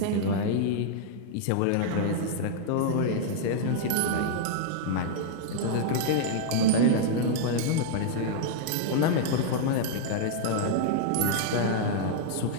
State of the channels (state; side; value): different; both; correlation -0.01